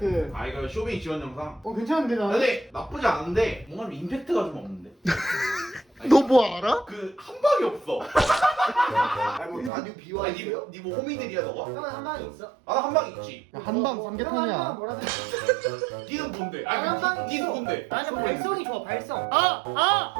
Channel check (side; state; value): left; drops out; at 9.7 s